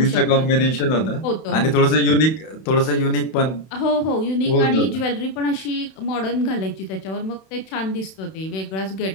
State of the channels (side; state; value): right; late; 31 ms